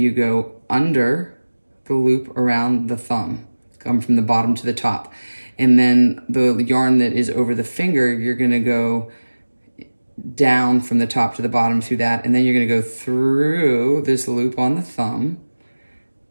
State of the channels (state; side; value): inverted; both; correlation -1.00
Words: go under the loop around the thumb, come from the bottom to the top. And then the yarn that is over the finger, you're gonna go down from the top to the bottom through that, and then you're gonna go through this loop on the thumb,